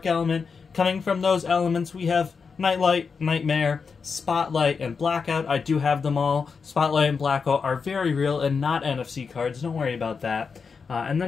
element. Coming from those elements, we have Nightlight, Nightmare, Spotlight, and Blackout. I do have them all. Spotlight and Blackout are very real and not NFC cards. Don't worry about that. And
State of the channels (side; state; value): right; quieter; 5.4 dB